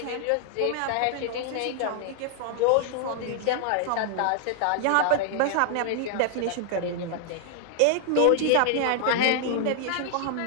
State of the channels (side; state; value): both; different; correlation 0.00